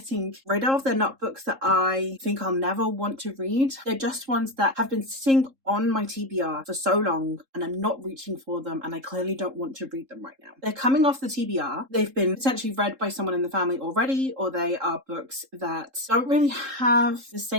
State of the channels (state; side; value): late; left; 3.7 ms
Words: rid of. They're not books that I think I'll never want to read. They're just ones that have been sitting on my TBR for so long, and I'm not reaching for them, and I clearly don't want to read them right now. They're coming off the TBR. They've been potentially read by someone in the family already, or they are books that don't really have the